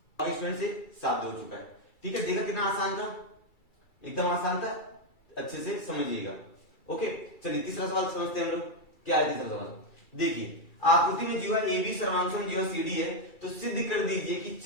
स्टूडेंट से साध्य हो चुका है, ठीक है। देखा कितना आसान था, एकदम आसान था, अच्छे से समझिएगा, ओके। चलिए तीसरा सवाल समझते हैं हम लोग, क्या है तीसरा सवाल, देखिए आकृति में जीवा AB सर्वांगसम जीवा CD है, तो सिद्ध कर दीजिए कि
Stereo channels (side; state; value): right; late; 2.3 ms